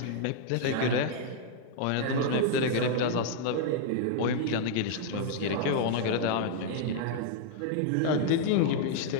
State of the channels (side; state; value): both; different; correlation -0.01